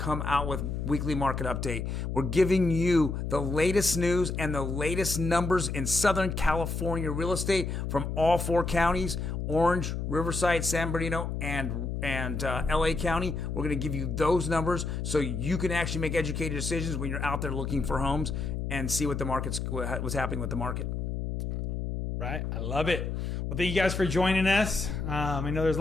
out with weekly market update. We're giving you the latest news and the latest numbers in Southern California real estate from all 4 counties: Orange, Riverside, San Bernardino, and LA County. We're going to give you those numbers so you can actually make educated decisions when you're out there looking for homes and see what's happening with the market. Right. I love it. Well, thank you guys for joining us. I know there's a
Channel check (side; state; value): left; noise; hum, 3 dB below the sound